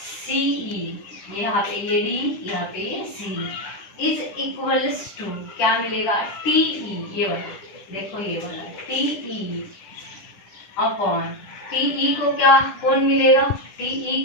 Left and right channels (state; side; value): late; right; 10 ms